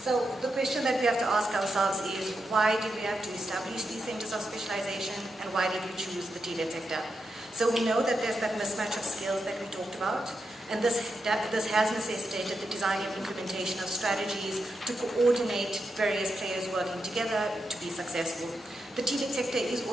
the question that we have to ask ourselves is, why did we have to establish these centres of specialisation, and why did we choose the TVET sector? So we know that there's that mismatch of skills that we talked about, and this has necessitated the design and implementation of strategies to coordinate various players working together to be successful. The TVET sector is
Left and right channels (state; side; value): normal; both; correlation 0.86